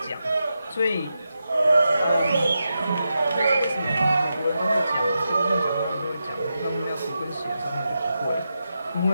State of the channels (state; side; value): inverted; both; correlation -0.88